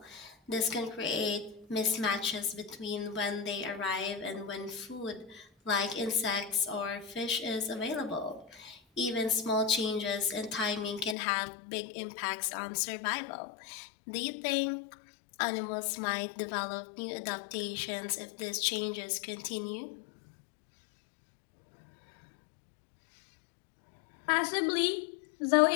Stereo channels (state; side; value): drops out; right; at 11.2 s